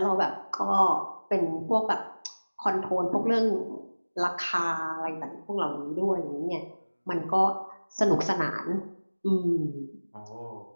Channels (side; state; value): both; inverted; correlation -1.00